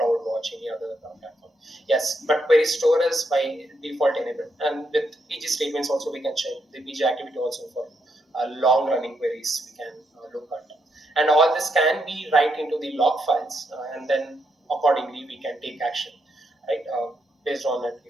any other platform. Yes, but query store is by default enabled. And with PG statements also we can check the PG activity also for long running queries we can look at. And all this can be right into the log files and then accordingly we can take action, right? Based on it,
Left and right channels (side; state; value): both; normal; correlation 0.79